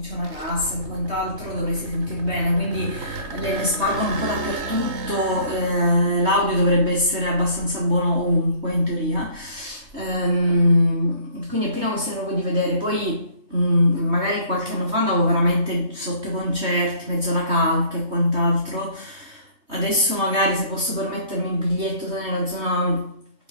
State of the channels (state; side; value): late; left; 3.3 ms